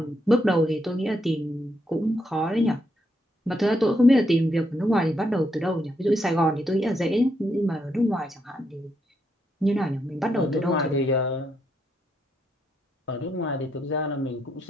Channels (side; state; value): both; normal; correlation 0.78